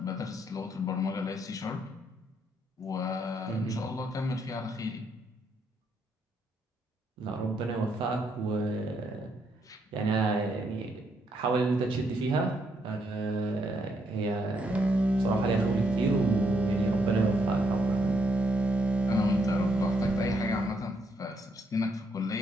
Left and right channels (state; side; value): normal; both; correlation 0.75